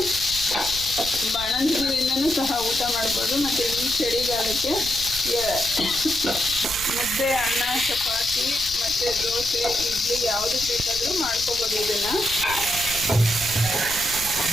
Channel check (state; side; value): noise; right; rumble, 12 dB below the sound